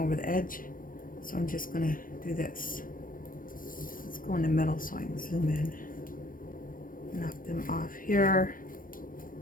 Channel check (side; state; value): right; late; 0.40 ms